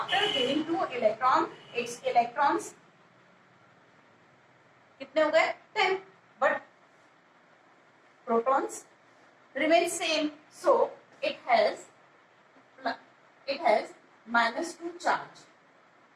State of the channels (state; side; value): identical; both; correlation 1.00